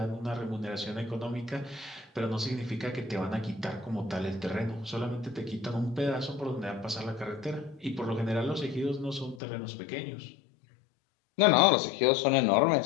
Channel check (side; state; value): right; drops out; at 9.4 s